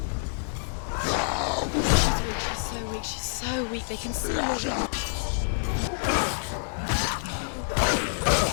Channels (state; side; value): silent; right; 60 dB below the other